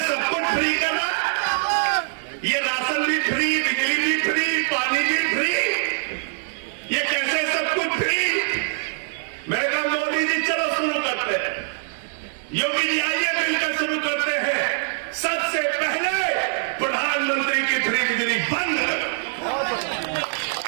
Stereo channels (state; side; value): silent; left; 59 dB below the other